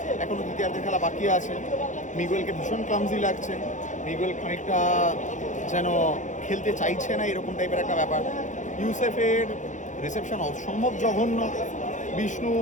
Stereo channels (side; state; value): right; late; 0.36 ms